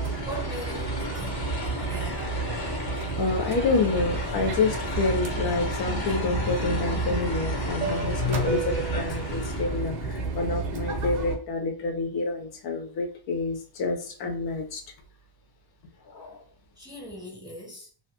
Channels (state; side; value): late; right; 1.1 ms